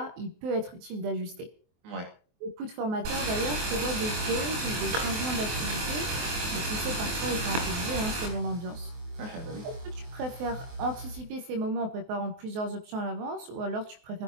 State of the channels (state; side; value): late; left; 23 ms